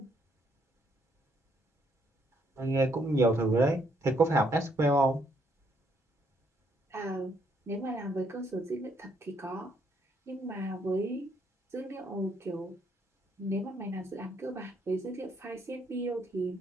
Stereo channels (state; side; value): normal; both; correlation 0.71